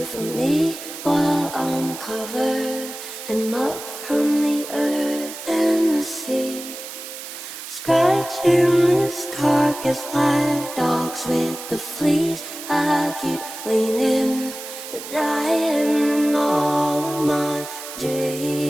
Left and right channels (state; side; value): noise; right; hiss, 11 dB below the sound